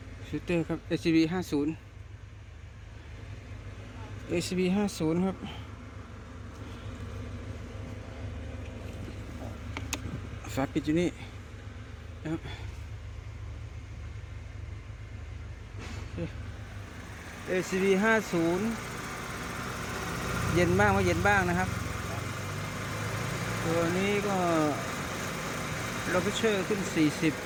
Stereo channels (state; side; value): identical; both; correlation 1.00